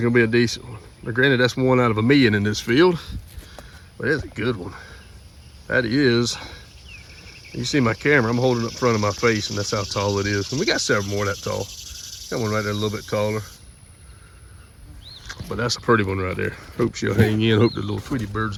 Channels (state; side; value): identical; both; correlation 1.00